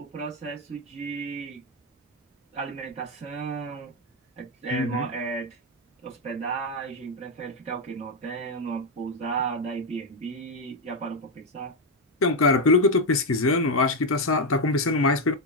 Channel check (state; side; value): normal; both; correlation 0.06